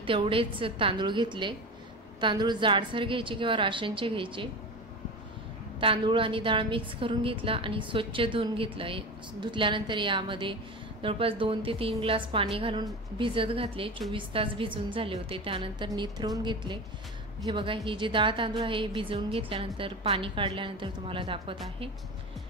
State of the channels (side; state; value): both; normal; correlation 0.27